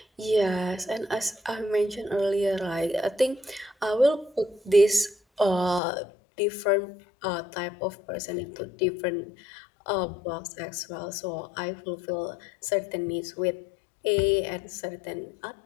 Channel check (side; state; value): right; drops out; at 5.8 s